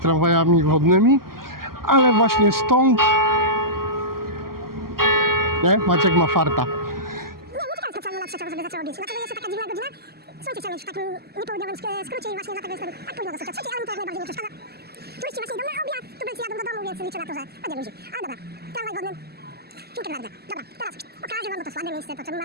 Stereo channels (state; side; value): normal; both; correlation -0.20